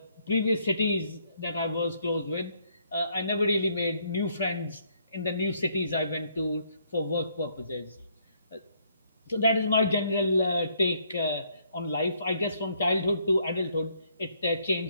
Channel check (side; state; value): both; inverted; correlation -0.69